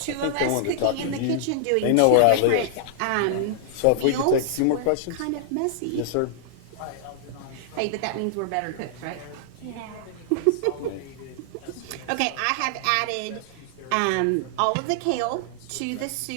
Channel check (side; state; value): both; different; correlation -0.01